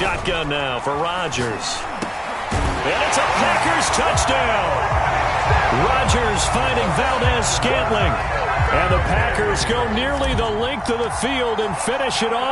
now for Rodgers. And it's a Packers touchdown. Rodgers finding Valdez-Scantling. And the Packers go nearly the length of the field and finish it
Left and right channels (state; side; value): identical; both; correlation 1.00